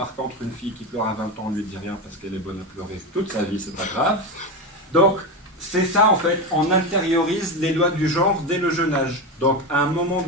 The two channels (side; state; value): both; normal; correlation 0.17